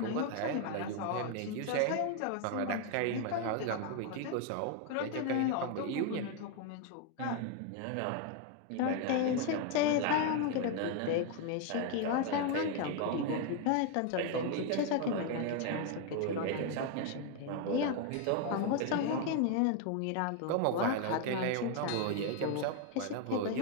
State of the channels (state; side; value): different; both; correlation 0.01